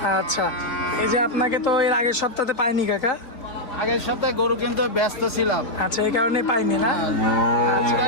আচ্ছা, এই যে আপনাকে তো এর আগের সপ্তাহে পাইনি কাকা। আগের সপ্তাহে গরু কিনতে ব্যস্ত ছিলাম। আচ্ছা, এই কারণে পাইনি না।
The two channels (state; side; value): late; right; 4.0 ms